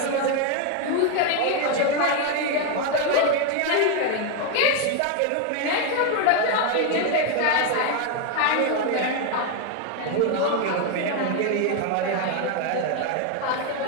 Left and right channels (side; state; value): both; different; correlation 0.01